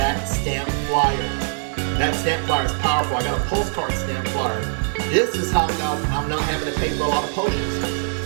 stamp flyer. That stamp flyer is powerful. I got a postcard stamp flyer. This is how, guys, I'm not having to pay for a lot of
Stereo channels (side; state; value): left; silent; 59 dB below the other